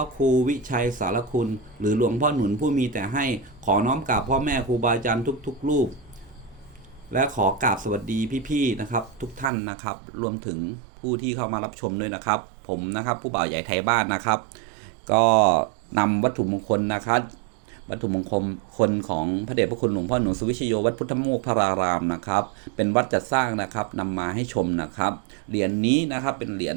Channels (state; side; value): drops out; left; at 9.5 s